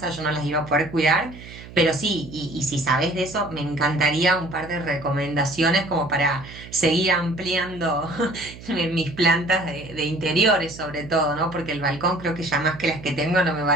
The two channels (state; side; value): noise; right; hum, 16 dB below the sound